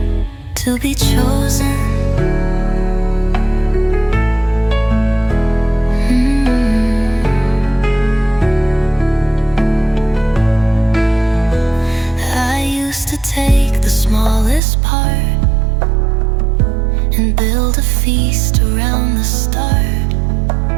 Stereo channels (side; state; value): left; drops out; at 14.6 s